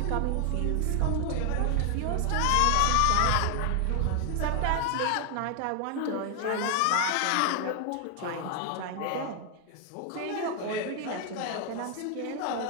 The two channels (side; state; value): both; different; correlation 0.00